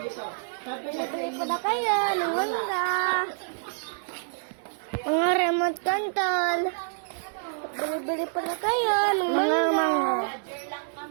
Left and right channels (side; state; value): left; silent; 60 dB below the other